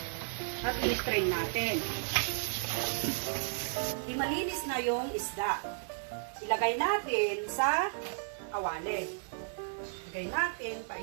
at i-strain natin. Di malinis na yung isda. Ilagay natin sa kawali. Ilagay natin pa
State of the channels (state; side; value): silent; left; 55 dB below the other